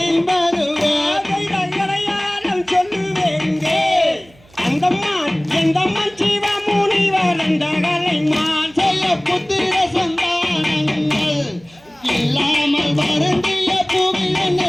எந்தம்மன் சிவ முனிவர் எந்தகளை மான் செய்ய புத்திர சந்தானங்கள் இல்லாமல் வருந்திய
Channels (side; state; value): right; noise; hum, 28 dB below the sound